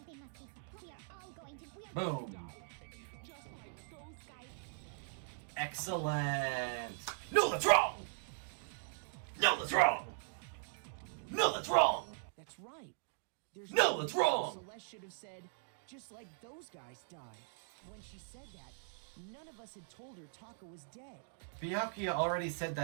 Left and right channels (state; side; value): silent; left; digital silence